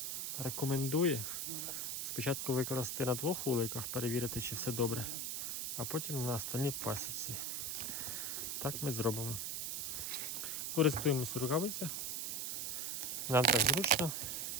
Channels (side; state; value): right; noise; hiss, 2 dB below the sound